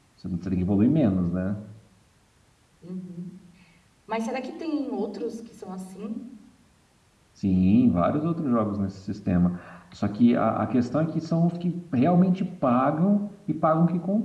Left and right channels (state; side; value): identical; both; correlation 1.00